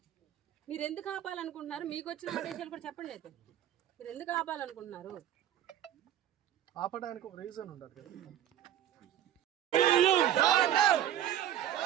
మీరు ఎందుకు ఆపాలనుకుంటున్నారు? మీకు వచ్చిన ఆదేశాలు కూడా చెప్పండి. అయితే మీరు ఎందుకు ఆపాలనుకుంటున్నారు? ఆపడానికి ఒక రీజన్ ఉండదు.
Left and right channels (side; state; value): left; quieter; 11.3 dB